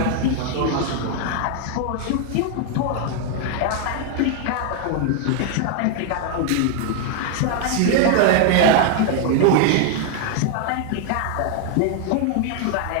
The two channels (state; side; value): different; both; correlation 0.00